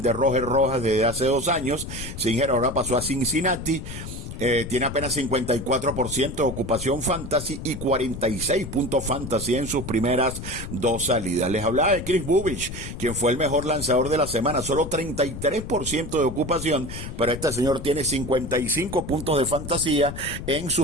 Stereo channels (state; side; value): noise; left; rumble, 9 dB below the sound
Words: de Roger Rojas desde hace 2 años. Singer ahora pasó a Cincinnati. Tiene apenas 54% de ocupación fantasy y 46 puntos fantasy en sus primeras 2 salidas. Les hablaba de Chris Bubich, quien fue el mejor lanzador de la semana, solo 33% de ocupación, pero este señor tiene 55 puntos de fantasía en